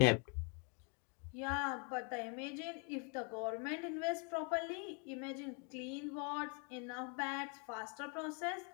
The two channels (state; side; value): quieter; right; 37.2 dB